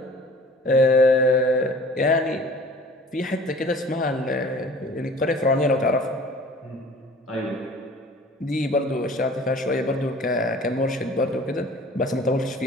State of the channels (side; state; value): both; normal; correlation 0.47